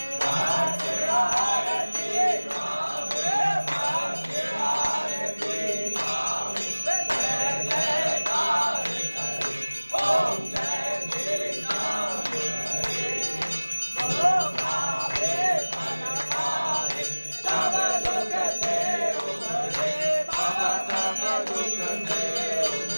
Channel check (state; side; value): inverted; both; correlation -1.00